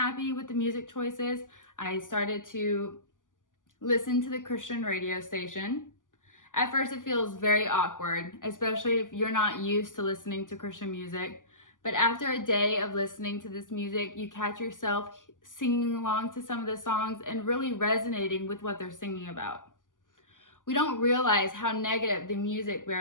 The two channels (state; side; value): late; right; 0.88 ms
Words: with the music choices, I started to listen to the Christian radio station. At first, it feels very awkward, especially if you're not used to listening to Christian music. But after a day of listening to this music, you catch yourself singing along to some of the songs and really resonating with what they're singing about. We don't realize how negative the music we